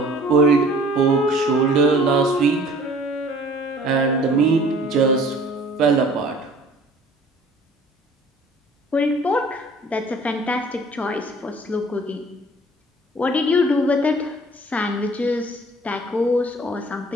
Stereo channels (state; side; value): normal; both; correlation 0.51